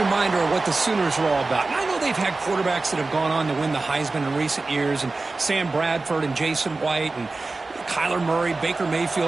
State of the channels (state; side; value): quieter; left; 3.5 dB